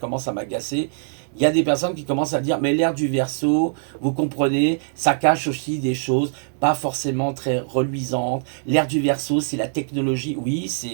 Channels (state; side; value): silent; left; digital silence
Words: à m'agacer. Il y a des personnes qui commencent à dire, mais l'ère du Verseau, vous comprenez, ça cache aussi des choses pas forcément très reluisantes. L'ère du Verseau, c'est la technologie. Oui,